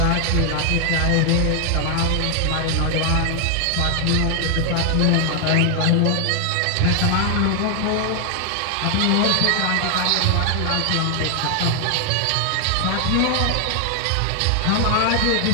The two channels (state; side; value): different; both; correlation 0.00